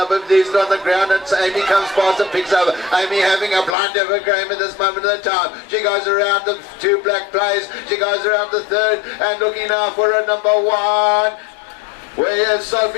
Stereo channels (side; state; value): right; drops out; at 3.8 s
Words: a these on the ground, and Amy comes past and picks up. Amy having a blind over game at this moment of the time. She goes around the 2 black players, she goes around the 3rd and looking now for a number 1. Where is